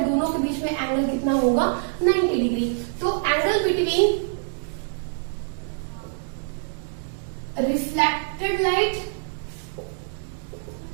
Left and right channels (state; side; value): silent; left; digital silence